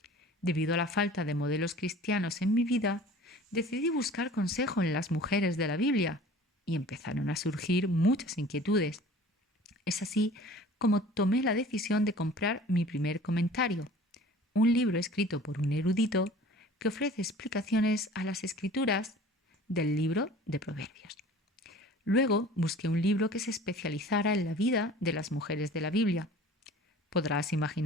Debido a la falta de modelos cristianos en mi vida, decidí buscar consejo en las mujeres de la Biblia y empezaron a surgir muchas inquietudes. Es así como tomé la decisión de comprar mi primer comentario, un libro escrito por un erudito que ofrece explicaciones a las escrituras del libro de Proverbios. Luego busqué un libro que se especializara en la vida de las mujeres de la Biblia. Podrás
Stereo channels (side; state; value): both; normal; correlation 0.45